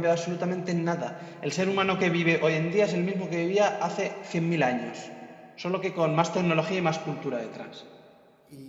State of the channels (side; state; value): both; identical; correlation 1.00